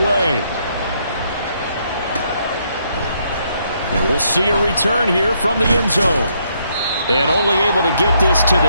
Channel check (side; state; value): both; inverted; correlation -0.73